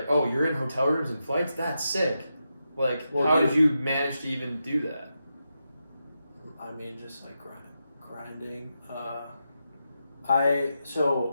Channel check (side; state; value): both; inverted; correlation -0.87